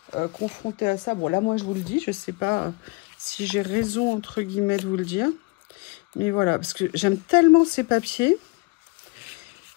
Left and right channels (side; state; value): right; quieter; 27.5 dB